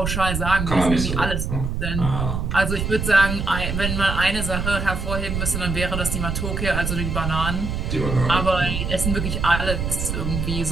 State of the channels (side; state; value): right; noise; rumble, 2 dB below the sound